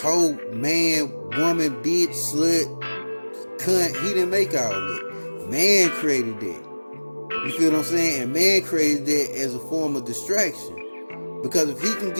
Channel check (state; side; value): inverted; both; correlation -1.00